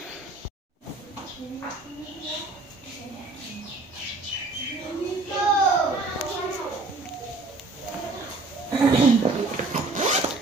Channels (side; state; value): left; quieter; 3.4 dB